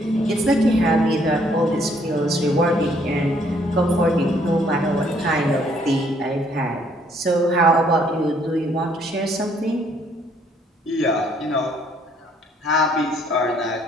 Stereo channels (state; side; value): normal; both; correlation 0.66